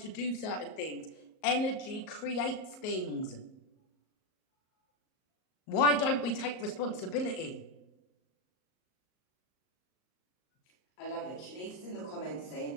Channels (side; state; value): right; late; 38 ms